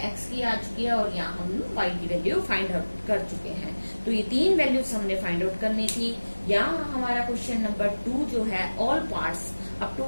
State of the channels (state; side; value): inverted; both; correlation -1.00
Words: x की आ चुकी है, और यहाँ हम y की वैल्यू फाइंड आउट कर चुके हैं। तो ये तीन वैल्यूज हमने फाइंड आउट करनी थी। यहाँ हमारा क्वेश्चन नंबर 2 जो है, all parts up to